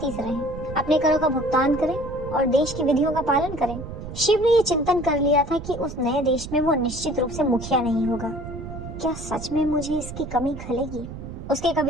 से रहें, अपने करों का भुगतान करें और देश की विधियों का पालन करें। शिव ने ये चिंतन कर लिया था कि उस नए देश में वो निश्चित रूप से मुखिया नहीं होगा। क्या सच में मुझे इसकी कमी खलेगी? उसके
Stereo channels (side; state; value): right; noise; rumble, 10 dB below the sound